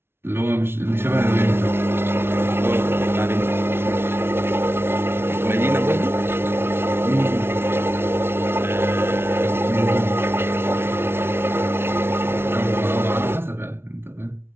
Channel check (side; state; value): left; late; 0.12 ms